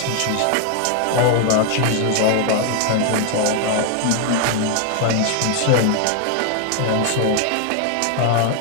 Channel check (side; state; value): both; different; correlation 0.00